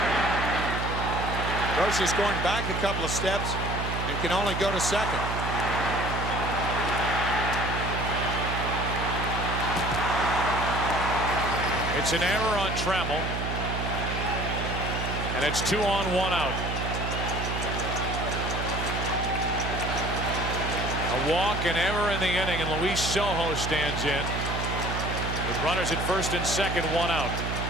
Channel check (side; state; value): right; noise; hum, 3 dB below the sound